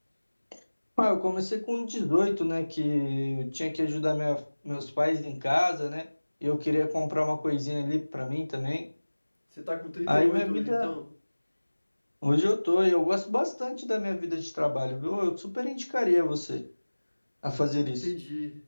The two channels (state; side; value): inverted; both; correlation -1.00